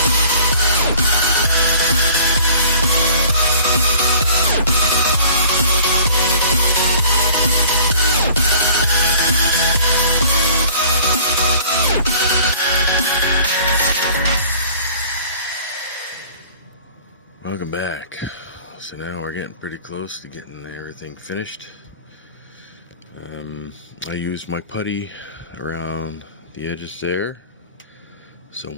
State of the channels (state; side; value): inverted; both; correlation -0.50